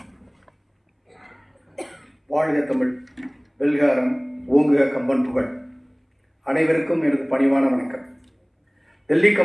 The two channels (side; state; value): both; identical; correlation 1.00